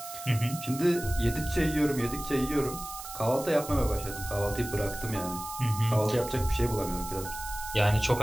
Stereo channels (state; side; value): noise; right; hiss, 11 dB below the sound